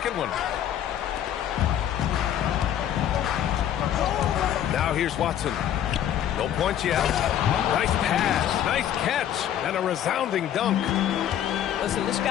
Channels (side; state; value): right; quieter; 10.6 dB